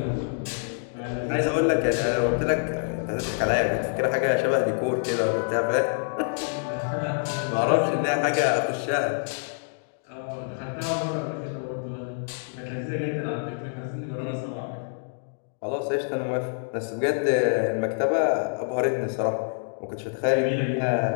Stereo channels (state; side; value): silent; right; digital silence